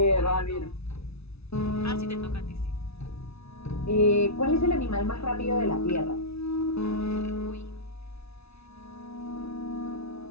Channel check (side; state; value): right; late; 0.79 ms